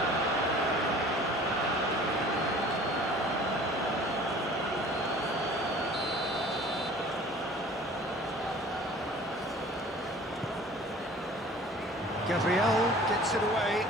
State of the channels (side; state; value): both; normal; correlation 0.47